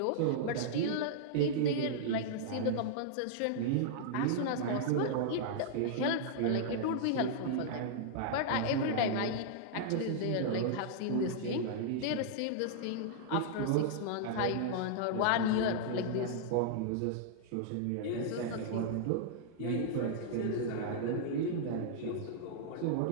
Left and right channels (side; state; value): both; different; correlation -0.02